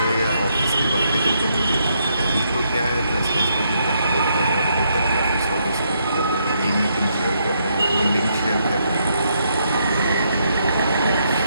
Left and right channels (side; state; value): both; inverted; correlation -0.76